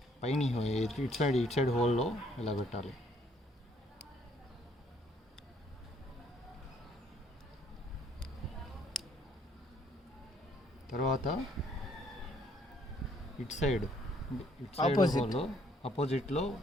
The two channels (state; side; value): normal; both; correlation 0.65